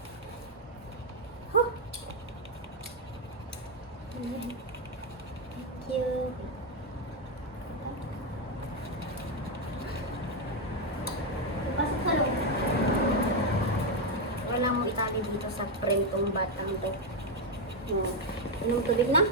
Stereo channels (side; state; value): both; normal; correlation 0.04